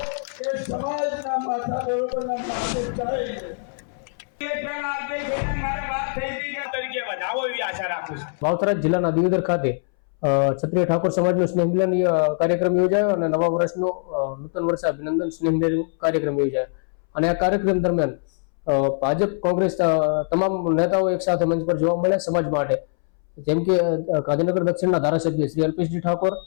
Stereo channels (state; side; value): silent; right; 63 dB below the other